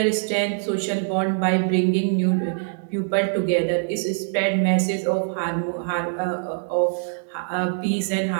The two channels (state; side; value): silent; left; 60 dB below the other